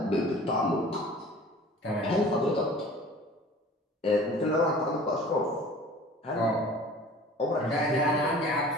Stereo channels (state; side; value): normal; both; correlation 0.45